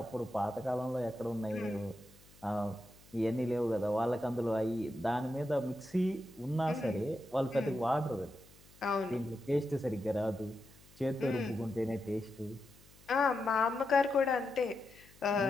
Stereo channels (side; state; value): left; noise; hum, 25 dB below the sound